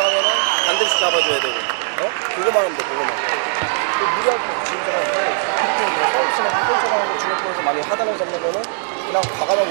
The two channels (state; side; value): silent; left; digital silence